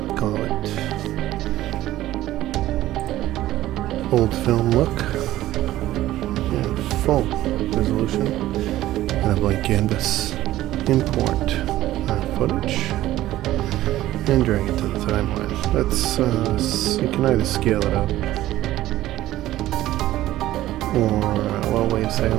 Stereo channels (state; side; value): quieter; left; 14.9 dB